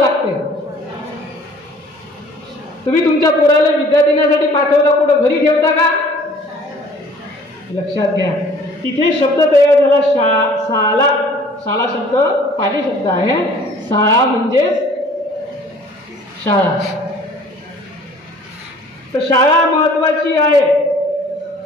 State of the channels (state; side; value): normal; both; correlation 0.52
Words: लागते? तुम्ही तुमच्या पोराला विद्या देण्यासाठी पाठवता, कुठं घरी ठेवता का? लक्षात घ्या. तिथे शब्द तयार झाला शाळा. शाळा शब्द पाली शब्द आहे. शाळा म्हणजे शाळा. तर शाळा महत्वाची आहे.